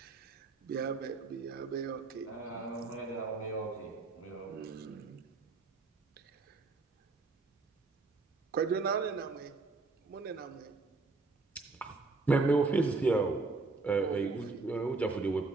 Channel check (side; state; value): left; quieter; 3.8 dB